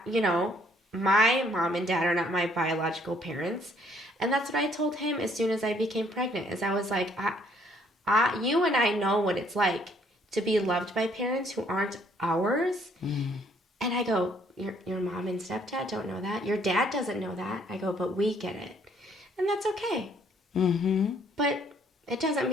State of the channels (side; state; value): both; normal; correlation 0.65